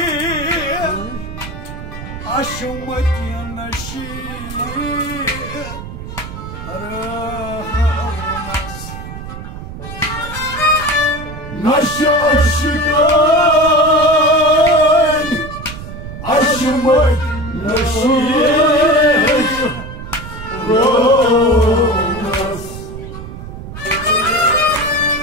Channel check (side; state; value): right; noise; rumble, 11 dB below the sound